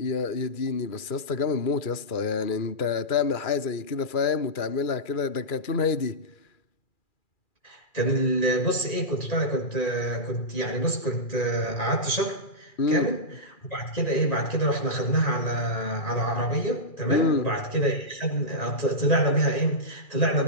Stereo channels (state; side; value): late; right; 2.4 ms